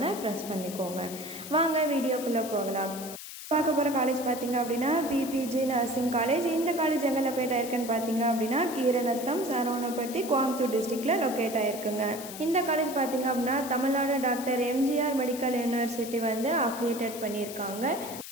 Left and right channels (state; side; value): noise; left; hiss, 11 dB below the sound